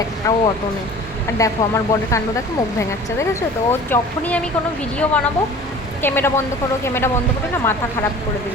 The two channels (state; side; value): normal; both; correlation 0.43